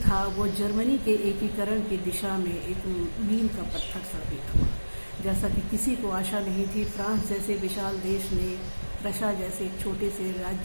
था वो जर्मनी के एकीकरण की दिशा में एक मील का पत्थर साबित हुआ। जैसा कि किसी को आशा नहीं थी, फ्रांस जैसे विशाल देश ने प्रशा जैसे एक छोटे से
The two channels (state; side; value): inverted; both; correlation -1.00